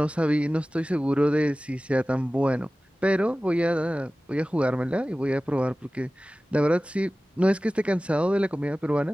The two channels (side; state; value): both; normal; correlation 0.97